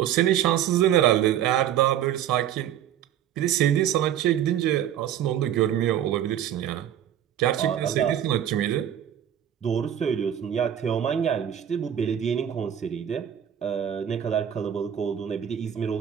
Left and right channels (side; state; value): left; quieter; 10.2 dB